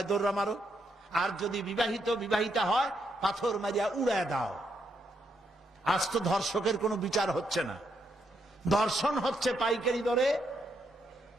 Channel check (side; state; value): both; normal; correlation 0.78